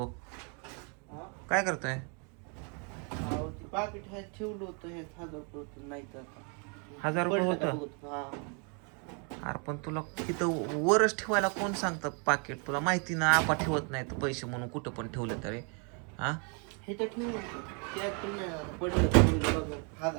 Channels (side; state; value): left; quieter; 37.0 dB